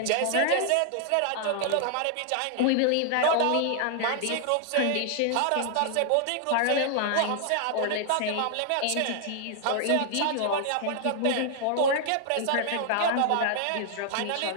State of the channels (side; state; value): both; different; correlation 0.00